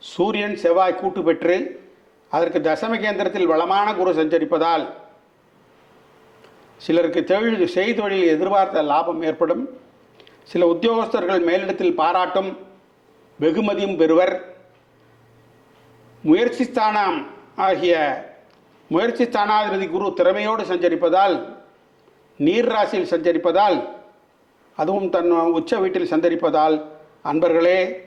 சூரியன், செவ்வாய் கூட்டு பெற்று அதற்கு தசம கேந்திரத்தில் வளமான குரு சஞ்சரிப்பதால் சிலருக்கு செய்தொழில் எதிர்பார்த்த லாபம் ஏற்படும். சில உத்தியோகஸ்தர்கள் மேலிடத்தில் பாராட்டும் வெகுமதியும் பெறுவர். முயற்சி ஸ்தானாதிபதி குரு திறமையோடு சஞ்சரிப்பதால், நீர் ராசியில் சஞ்சரிப்பதால், அதுவும் தன் உச்ச வீட்டில் சஞ்சரிப்பதால் அன்பர்களே,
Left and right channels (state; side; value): identical; both; correlation 1.00